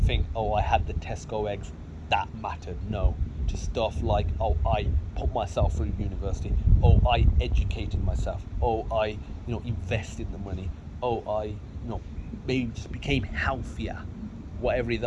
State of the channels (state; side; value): identical; both; correlation 1.00